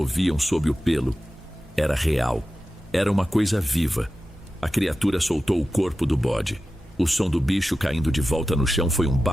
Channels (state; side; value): normal; both; correlation 0.93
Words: sob o pelo, era real. Era uma coisa viva. A criatura soltou o corpo do bode. O som do bicho caindo de volta no chão foi um